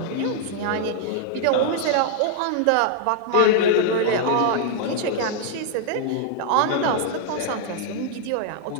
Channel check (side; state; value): both; different; correlation 0.00